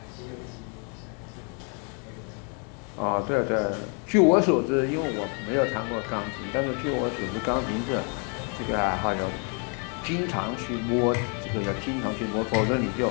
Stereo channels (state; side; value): quieter; right; 38.5 dB